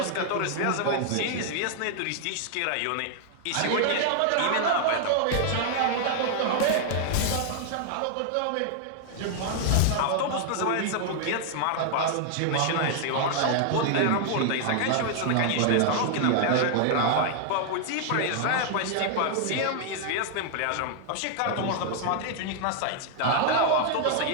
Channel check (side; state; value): both; different; correlation 0.00